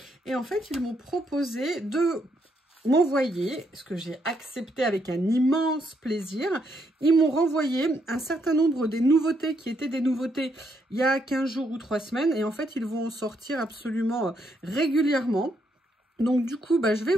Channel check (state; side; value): normal; both; correlation 0.76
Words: Et en fait, ils m'ont proposé de m'envoyer, ce que j'ai accepté avec un immense plaisir. Ils m'ont renvoyé un certain nombre des nouveautés qui étaient des nouveautés il y a 15 jours ou 3 semaines. Et en fait, ils vont en sortir absolument régulièrement. Donc du coup, je vais